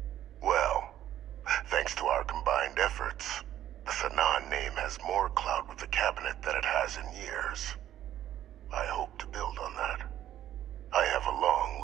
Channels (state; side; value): quieter; left; 12.0 dB